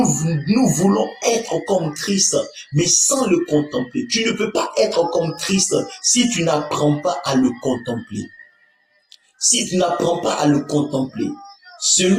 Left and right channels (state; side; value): identical; both; correlation 1.00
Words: voulons être comme Christ, mais sans le contempler. Tu ne peux pas être comme Christ si tu n'apprends pas à le contempler. Si tu n'apprends pas à le contempler,